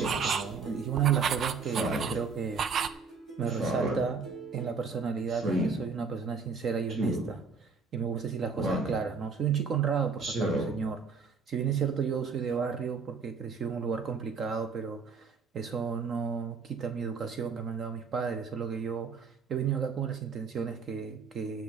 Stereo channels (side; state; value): left; quieter; 5.2 dB